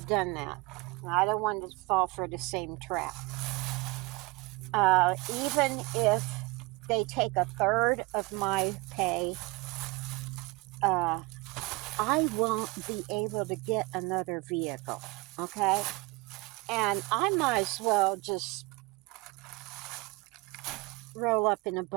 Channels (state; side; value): quieter; left; 24.6 dB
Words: done that. I don't want to fall for the same trap. Even if they take a third of my pay, uh, I won't be able to get another vehicle. Okay? And I might as well just roll up in a